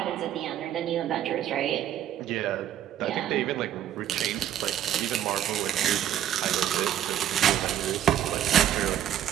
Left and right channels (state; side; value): quieter; left; 10.9 dB